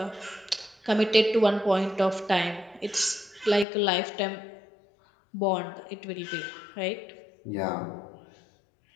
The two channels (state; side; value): drops out; right; at 3.7 s